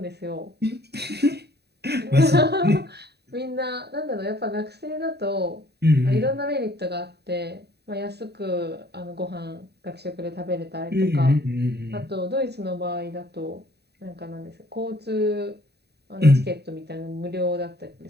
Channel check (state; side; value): late; left; 0.48 ms